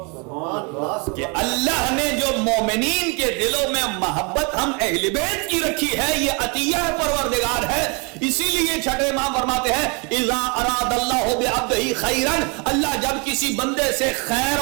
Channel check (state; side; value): quieter; left; 32.3 dB